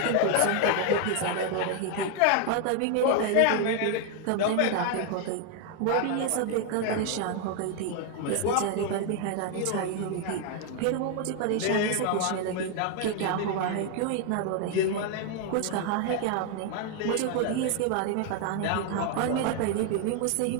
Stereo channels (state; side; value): different; both; correlation 0.01